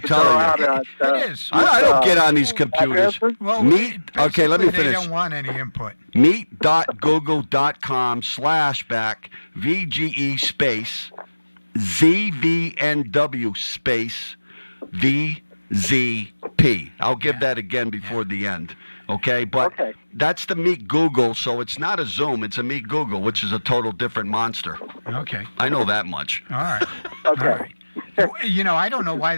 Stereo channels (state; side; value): inverted; both; correlation -1.00